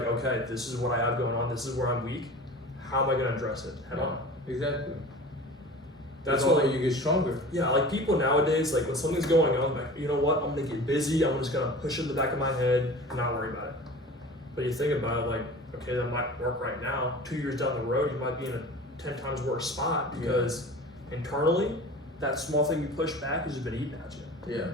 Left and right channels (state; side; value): normal; both; correlation 0.38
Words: okay, this is what I have going on. This is where I'm weak. how am I going to address it head on? Exactly. That's why why you get stronger. Yeah, like people nowadays, like when something's going on, like, you know what, I'm gonna get busy, I'm just gonna push it in the back of my head and not worry about it. But you think about it, like, okay, that might work right now. 2 years down the road, you might be in a 10 times worse spot because internally, that small thing you push back has just been eating at you. Yeah.